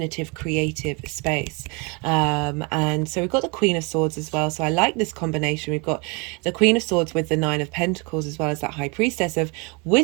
creative space. And so we've got the Queen of Swords as well, so I like this combination. We've got the Queen of Swords with the Nine of Pentacles, as well as that High Priestess of,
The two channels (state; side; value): quieter; left; 30.4 dB